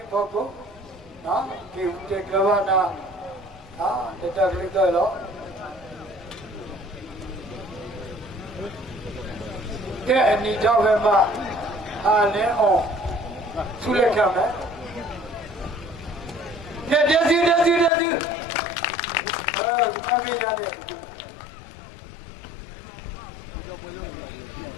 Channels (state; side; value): drops out; right; at 17.9 s